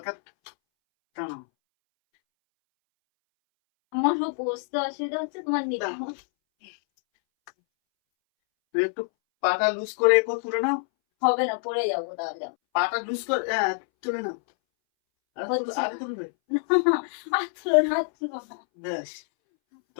টানো। আমার বসতে অসুবিধা হচ্ছে, তোমার নিতে তুই একটু পাটা লুজ করে তুলে নাও। হবে না, পড়ে যাবো তাহলে। পাটা লুজ করে তুলে নাও। আর তুলবে, আর তুলো না, তুলো না। বেশ।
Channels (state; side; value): silent; right; 61 dB below the other